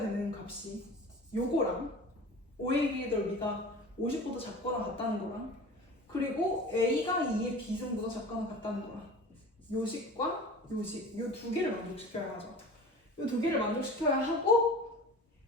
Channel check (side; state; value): both; normal; correlation 0.38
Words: 되는 값이 요거랑 OAB의 넓이가 50보다 작거나 같다는 거랑, 그리고 A가 2의 B승보다 작거나 같다는 거랑, 요식과 요식, 요 두 개를 만족시켜야 하죠. 요 두 개를 만족시켜야 하고,